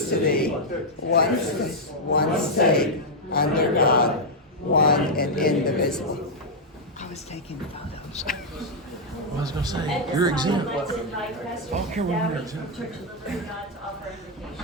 to thee, one state, under God, one and indivisible. I was taking photos. I was going to say, you're exempt. I'd like to invite Pastor Oh, Carol, you're Dowdy exempt. from Church of the Living God to offer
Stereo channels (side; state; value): both; normal; correlation -0.03